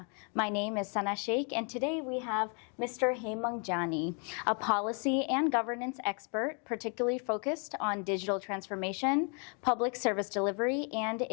My name is Sana Sheikh, and today we have Mr. Hemang Jani, a policy and governance expert, particularly focused on digital transformation, public service delivery, and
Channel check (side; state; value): right; quieter; 38.4 dB